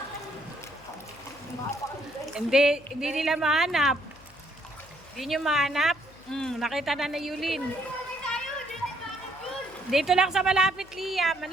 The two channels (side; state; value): left; noise; hum, 24 dB below the sound